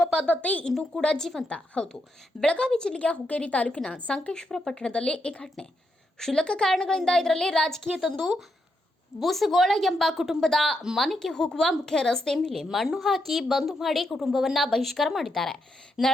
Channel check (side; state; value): both; normal; correlation 0.81